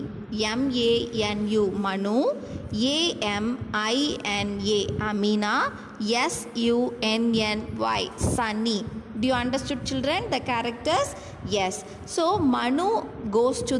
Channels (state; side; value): identical; both; correlation 1.00